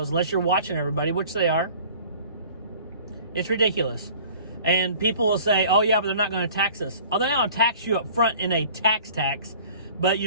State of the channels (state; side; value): inverted; both; correlation -0.48